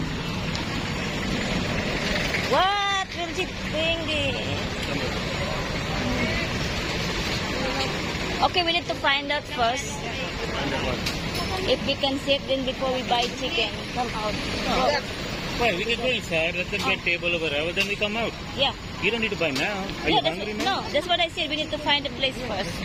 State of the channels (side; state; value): both; identical; correlation 1.00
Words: What will she bring this? Okay, we need to find out first if we can sit then before we buy chicken. Come out. Go. Why? We can go inside. Let them get table over there. Then we come out. Yeah. You don't need to buy now. Are Yeah, you hungry now? no, that's what I said. We need to find a place first.